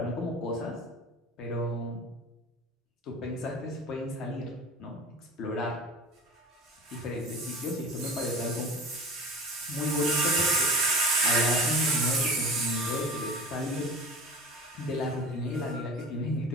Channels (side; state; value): both; normal; correlation 0.38